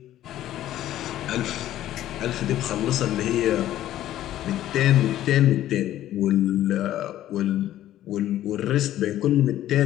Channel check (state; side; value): quieter; right; 13.0 dB